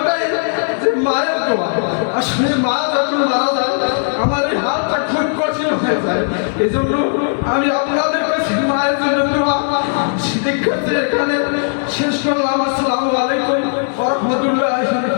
যে মায়ের দোয়া। আসলে মা যখন মারা যায় আমার এই হালটা খুব কঠিন হয়ে যায়। এই জন্য আমি আপনাদের কাছে মায়ের জন্য দোয়া শিক্ষার্থী এখানে শেষ করলাম। আসসালামু আলাইকুম ওয়া রাহমাতুল্লাহি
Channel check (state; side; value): silent; right; digital silence